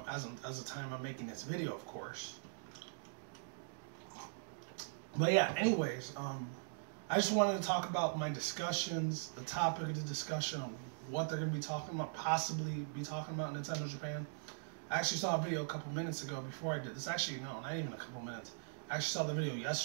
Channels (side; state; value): left; silent; digital silence